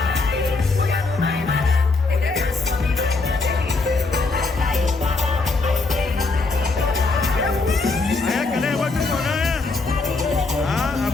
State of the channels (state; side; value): quieter; right; 3.7 dB